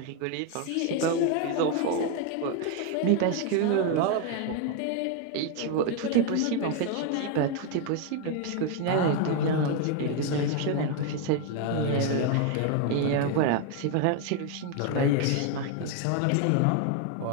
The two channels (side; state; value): both; different; correlation 0.01